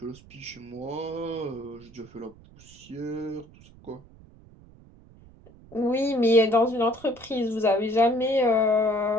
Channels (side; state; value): right; noise; rumble, 23 dB below the sound